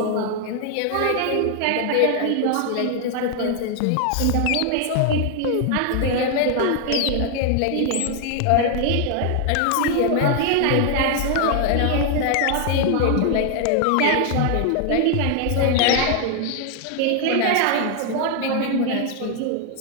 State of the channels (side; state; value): both; different; correlation 0.00